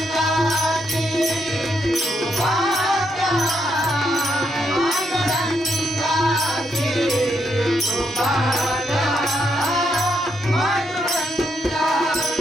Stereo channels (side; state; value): both; normal; correlation 0.78